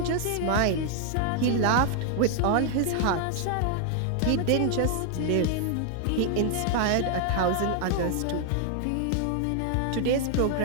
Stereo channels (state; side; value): different; both; correlation 0.00